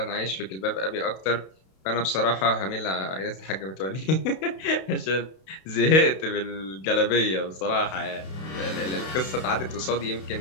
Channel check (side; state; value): right; late; 32 ms